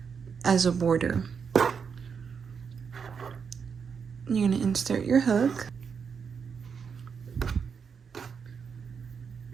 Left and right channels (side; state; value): left; quieter; 6.3 dB